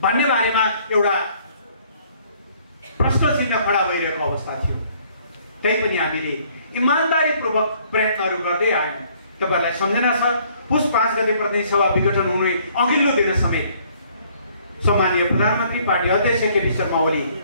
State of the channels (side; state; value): both; inverted; correlation -0.62